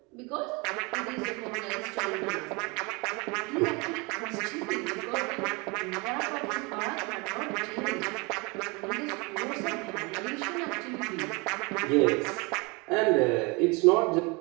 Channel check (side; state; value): left; quieter; 28.0 dB